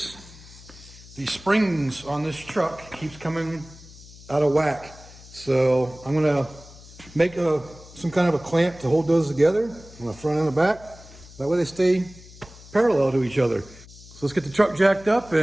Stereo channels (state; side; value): noise; left; hum, 20 dB below the sound